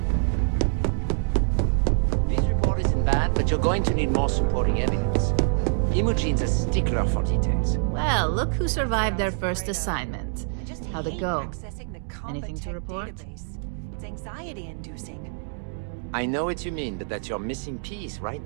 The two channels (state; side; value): silent; left; 59 dB below the other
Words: This report isn't bad, but you're going to need more supporting evidence. Imogene's a stickler for details. Well, look who survived their first assignment. How'd it go? Anything to report? It's anxiety-inducing. I know what you mean, but that's your missing piece right